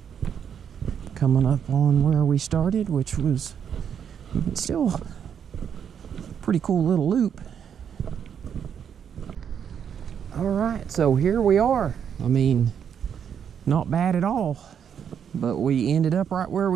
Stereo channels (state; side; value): quieter; left; 8.1 dB